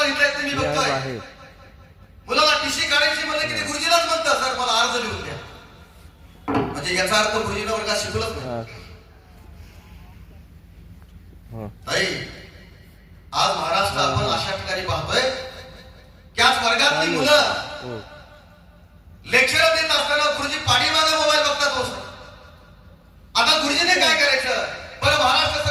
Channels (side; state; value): both; identical; correlation 1.00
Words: लिहिता येत मी बघतोय. मुलाला टीसी काढायची म्हणजे किती गुरुजीलाच म्हणतात सर मला अर्ज लिहून द्या. म्हणजे याचा अर्थ गुरुजीनं वर्गात शिकवलंच नाही. ताई आज महाराष्ट्र आपण अशा ठिकाणी पाहतोय त्याच वर्गातली मुलं लेक्चर देत असताना गुरुजी पाठीमागे मोबाईल बघतात. हो आता गुरुजीने काय करायचं? बरं महाराष्ट्र